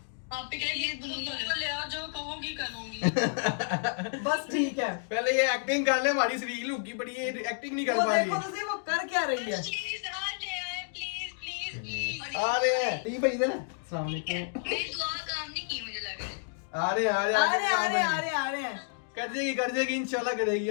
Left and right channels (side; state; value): right; silent; digital silence